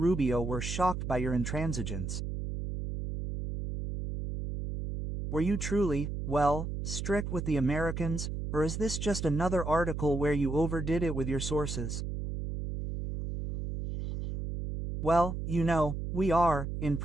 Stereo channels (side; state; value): right; noise; hum, 4 dB below the sound